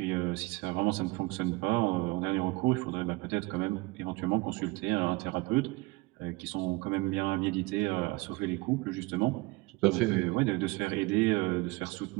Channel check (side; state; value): left; quieter; 23.4 dB